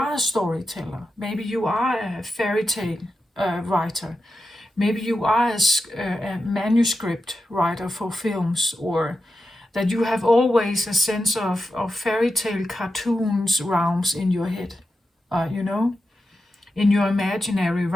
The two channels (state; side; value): normal; both; correlation 0.90